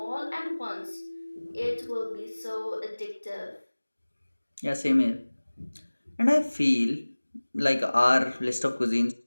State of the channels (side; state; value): both; inverted; correlation -1.00